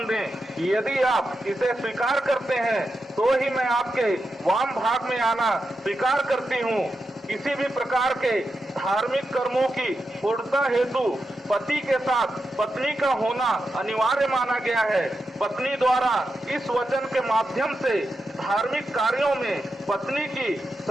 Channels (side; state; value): both; normal; correlation 0.88